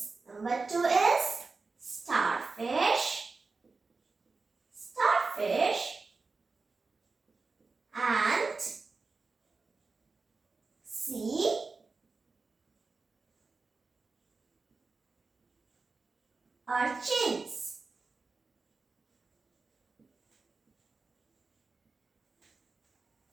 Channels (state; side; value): quieter; left; 4.1 dB